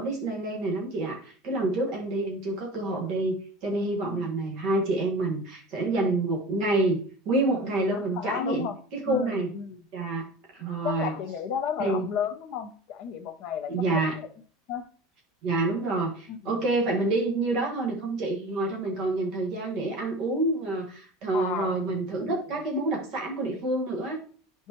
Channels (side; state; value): both; normal; correlation 0.36